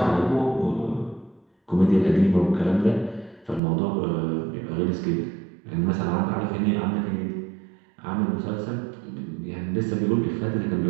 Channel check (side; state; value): left; drops out; at 3.6 s